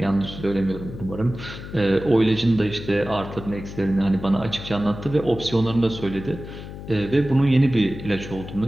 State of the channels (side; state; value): left; noise; hum, 11 dB below the sound